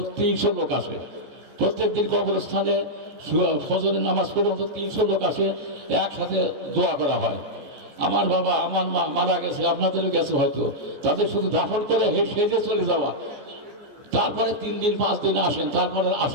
300 লোক আসে। প্রত্যেক দিন কবরস্থানে ফজরের নামাজ পড়ে অন্তত 300 লোক আসে, একসাথে দোয়া করা হয়। আমার বাবা, আমার মা মারা গেছে, আপনাদেরও গেছে হয়তো, তাদের শুধু দাফন করে সেজে চলে যাওয়া, তারপরে 3 দিন 5 দিন আসেন, তারপরে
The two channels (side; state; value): left; late; 14 ms